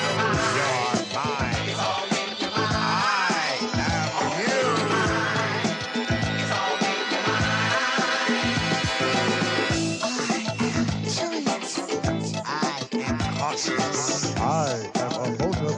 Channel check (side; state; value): both; identical; correlation 1.00